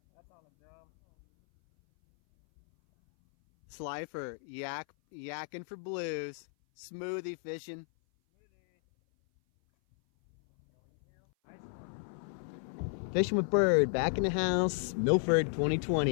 That's on the drum. Slifer, yakking for blues. Smoothie fishing. Fishing with Bird, back in the house, Milford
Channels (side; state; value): right; silent; 56 dB below the other